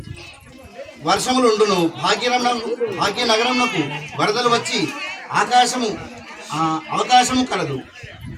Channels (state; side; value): identical; both; correlation 1.00